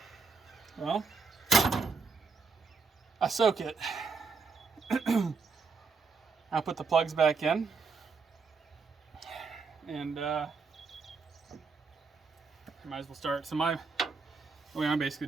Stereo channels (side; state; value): left; quieter; 4.8 dB